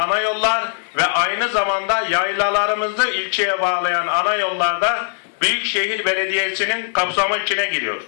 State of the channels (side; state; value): right; silent; digital silence